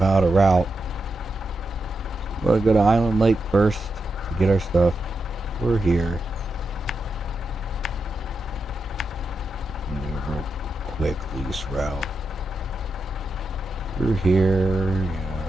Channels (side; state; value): both; normal; correlation 0.87